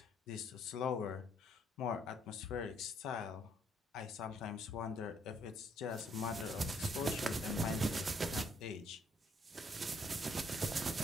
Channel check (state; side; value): normal; both; correlation 0.68